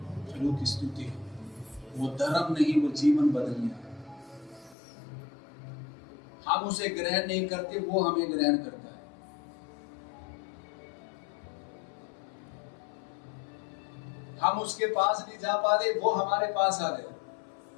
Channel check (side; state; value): right; drops out; at 4.8 s